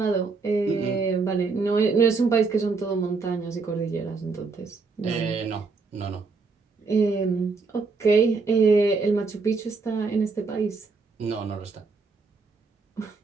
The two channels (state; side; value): quieter; left; 4.4 dB